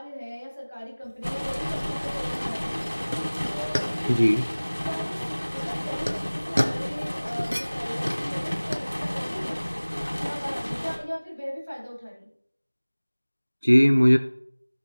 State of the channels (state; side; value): inverted; both; correlation -1.00